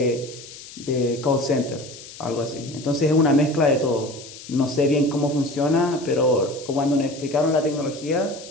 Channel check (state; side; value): noise; left; hiss, 16 dB below the sound